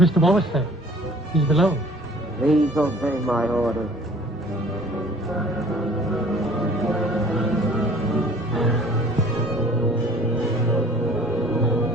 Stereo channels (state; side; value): normal; both; correlation 0.51